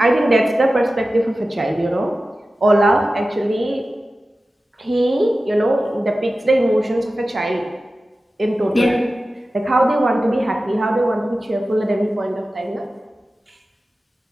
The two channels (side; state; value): both; normal; correlation 0.95